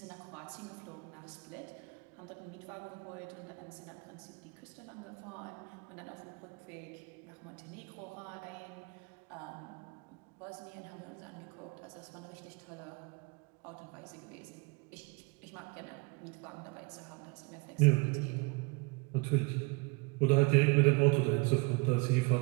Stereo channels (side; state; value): left; quieter; 28.6 dB